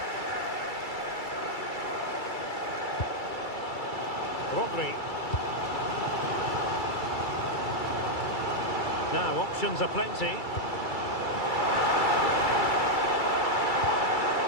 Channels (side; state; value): right; late; 2.3 ms